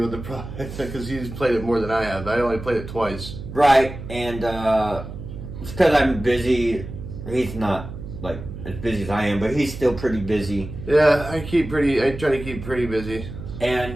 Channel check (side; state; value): right; noise; hum, 10 dB below the sound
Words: of the product because he's played it more than I have. I only played it twice. Right, and it's because I'm busy. He's not, like, as busy as I am, but he's still pretty busy. Yeah, I try to keep pretty busy.